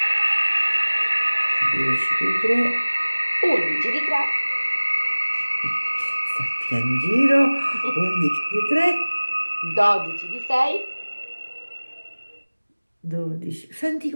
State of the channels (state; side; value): inverted; both; correlation -1.00